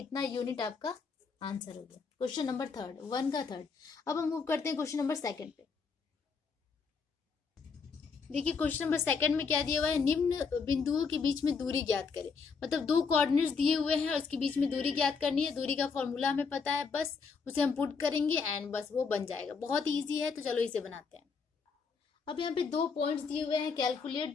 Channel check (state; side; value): quieter; right; 5.2 dB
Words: यूनिट आपका आंसर हो गया। क्वेश्चन नंबर थर्ड, 1 का थर्ड। अब हम मूव करते हैं क्वेश्चन नंबर सेकंड पे। देखिए क्वेश्चन नंबर सेकंड में क्या दिया हुआ है, निम्न बिंदुओं के बीच में दूरी ज्ञात करें, मतलब 2 कोऑर्डिनेट्स दिए हुए हैं और उसके बीच में दूरी ज्ञात करनी है। दूरी का फॉर्मूला हमें पता है, बस उसे हम पुट करेंगे एंड बस वो बन जाएगा, बहुत इजी है, तो चलो इसे बनाते हैं। अब यहाँ पे 2 पॉइंट्स दिए हुए हैं,